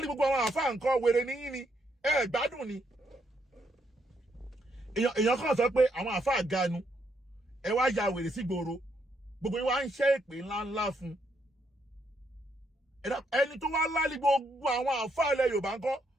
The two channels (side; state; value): both; normal; correlation 0.76